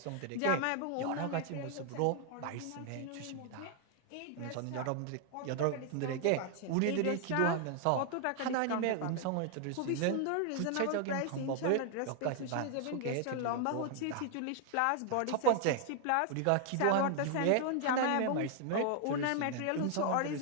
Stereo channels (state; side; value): different; both; correlation 0.00